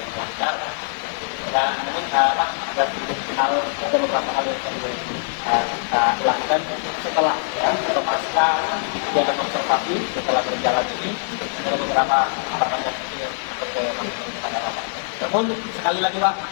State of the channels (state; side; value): silent; right; digital silence